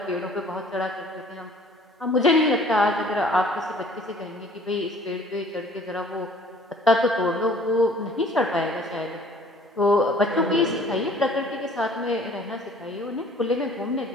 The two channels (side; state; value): both; normal; correlation 0.53